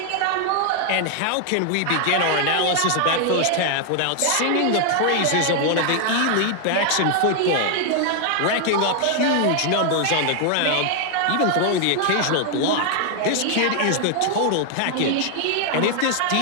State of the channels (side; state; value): both; different; correlation 0.00